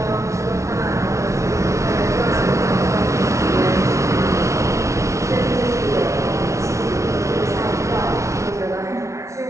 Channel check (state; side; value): late; left; 0.14 ms